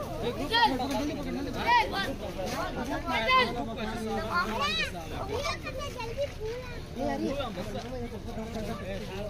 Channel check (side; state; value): both; identical; correlation 1.00